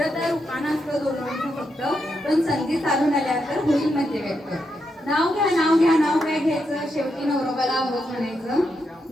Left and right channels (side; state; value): both; normal; correlation 0.83